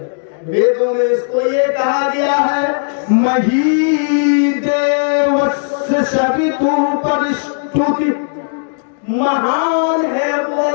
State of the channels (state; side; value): silent; right; digital silence